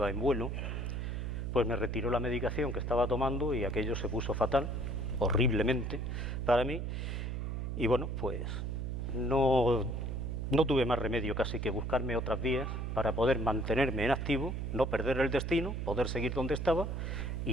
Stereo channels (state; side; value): noise; right; hum, 3 dB below the sound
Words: en vuelo, pues me retiró la medicación que estaba tomando y aquello se puso fatal, horriblemente para mí, y bueno, pues no tuve más remedio casi que buscarme otras vías para poder mantenerme en activo, no perder el destino, poder seguir donde estaba